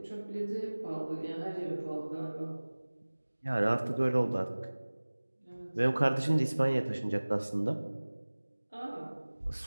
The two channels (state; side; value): inverted; both; correlation -1.00